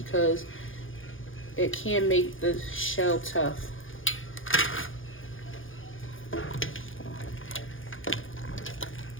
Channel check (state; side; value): late; right; 0.58 ms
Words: it can make the shell tough.